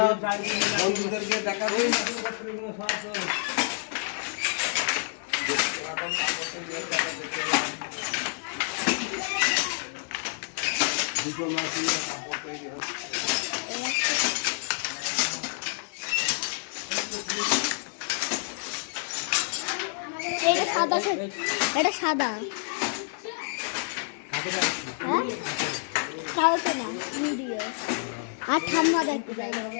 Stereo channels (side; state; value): right; silent; 59 dB below the other